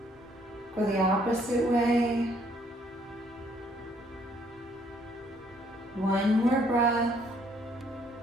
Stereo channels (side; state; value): both; normal; correlation 0.65